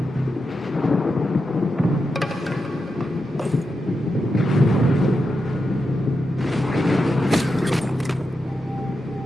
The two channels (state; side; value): normal; both; correlation 0.87